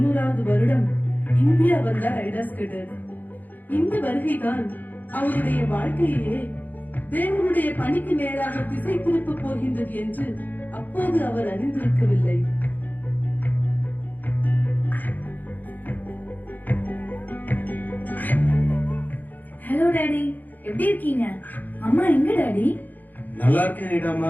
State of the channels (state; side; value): late; right; 0.084 ms